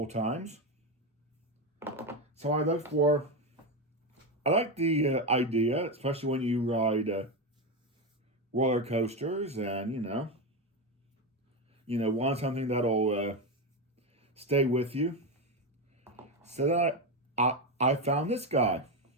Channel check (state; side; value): normal; both; correlation 0.12